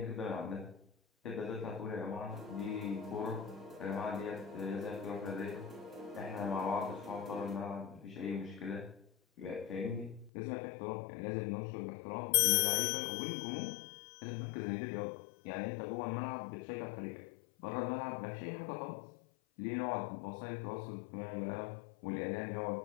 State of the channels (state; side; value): drops out; right; at 10.3 s